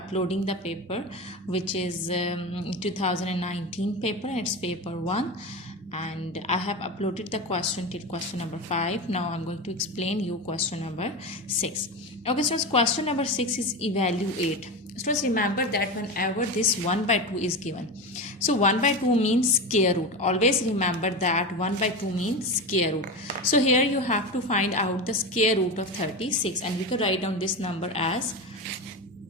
the paper which is 2019 paper, and it's paper 1, and I have uploaded the question till question number 5. Now I'm going to explain you question number 6. Okay students, question number 6 is evaluate. Students, remember that whenever this 1 by 2 is given, so 1 by 2 means square root. Always remember that 1 by 2 means square root. So here you have to find out the square root of 36, and we can write down this number as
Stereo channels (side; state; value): both; normal; correlation 0.21